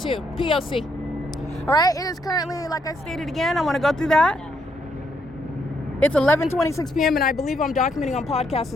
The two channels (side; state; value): both; normal; correlation 0.74